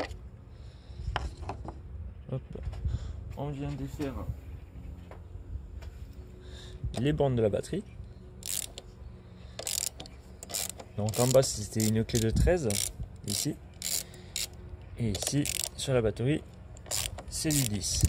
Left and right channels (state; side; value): identical; both; correlation 1.00